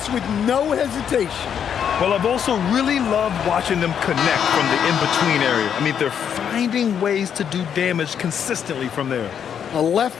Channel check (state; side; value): quieter; right; 8.2 dB